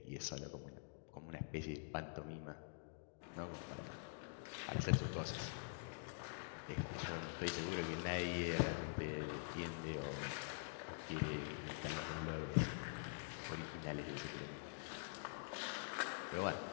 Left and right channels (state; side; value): silent; right; digital silence